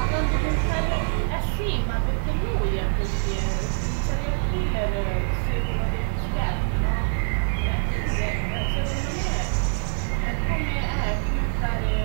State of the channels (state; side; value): silent; left; 62 dB below the other